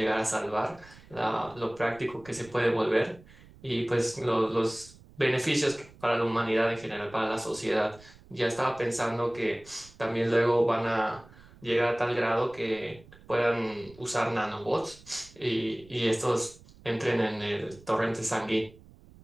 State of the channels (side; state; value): right; noise; rumble, 23 dB below the sound